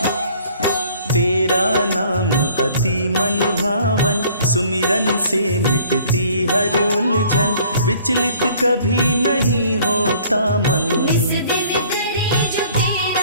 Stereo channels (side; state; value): both; inverted; correlation -0.56